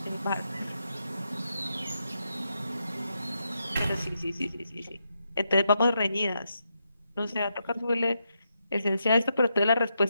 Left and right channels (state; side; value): inverted; both; correlation -0.83